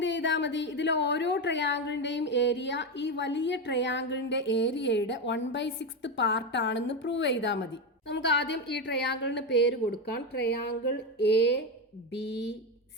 ചെയ്താൽ മതി, ഇതിലെ ഓരോ ട്രയാങ്കിളിന്റെയും ഏരിയ ഈ വലിയ ട്രയാങ്കിളിന്റെ ഏരിയയുടെ 1/6 പാർട്ടാണെന്ന് പ്രൂവ് ചെയ്താൽ മതി. നമുക്ക് ആദ്യം ഈ ട്രയാങ്കിളിന് പേര് കൊടുക്കാം, ട്രയാങ്കിൾ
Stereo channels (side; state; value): both; normal; correlation 0.13